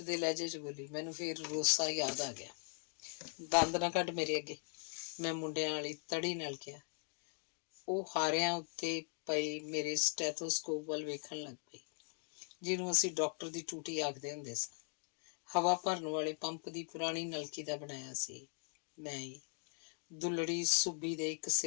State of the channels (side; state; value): right; silent; 51 dB below the other